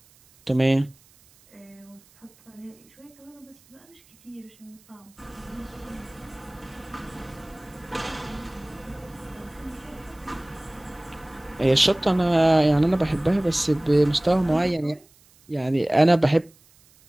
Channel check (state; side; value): noise; right; hiss, 29 dB below the sound